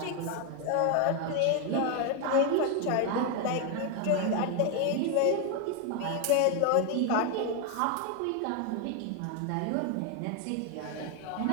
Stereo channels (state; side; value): different; both; correlation 0.01